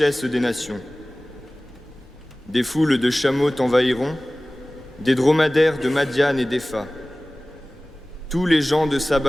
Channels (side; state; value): both; normal; correlation 0.98